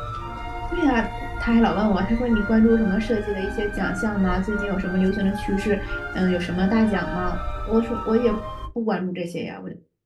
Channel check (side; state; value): both; identical; correlation 1.00